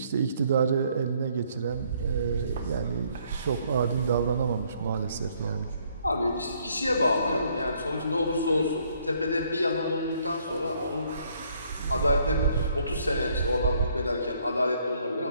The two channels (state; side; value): inverted; both; correlation -0.67